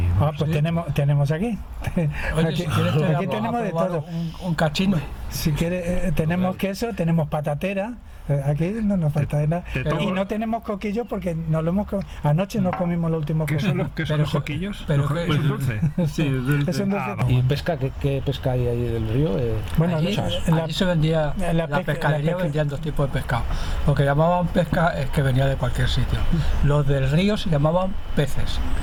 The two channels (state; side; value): identical; both; correlation 1.00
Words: pues tenemos aquí. Oye, aquí si quieres tenemos de todo. Un cachino. Si quieres, tenemos queso, tenemos patatera. Aquí no nos falta nada. Y no tenemos coquillos porque anoche nos comimos los últimos coquillos. ¿Qué son los coquillos? Pero ¿Es un dulce? Sí, es dulce. Es un dulce. ¿Y pesca? ¿Qué pesca hay ahí del río? Bueno, allí se vendía, la pescadería vendían 2 tipos de pescado. Lo que llamaban pesca es que venía de cualquier sitio. Los del río se llamaban peces.